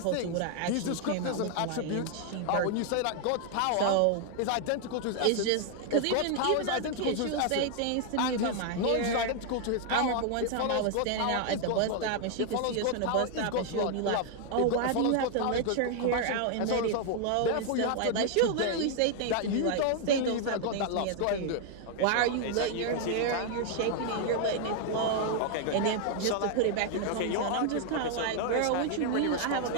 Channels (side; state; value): both; different; correlation 0.00